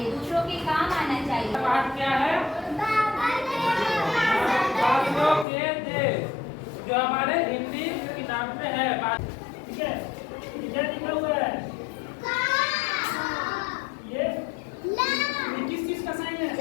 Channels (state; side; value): drops out; right; at 5.5 s